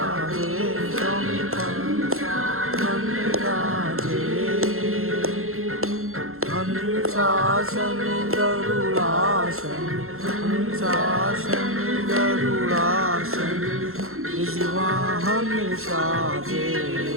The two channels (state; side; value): late; left; 0.62 ms